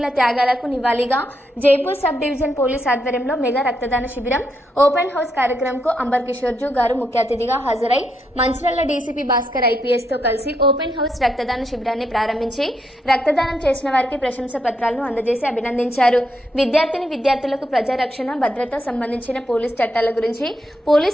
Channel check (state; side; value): normal; both; correlation 0.80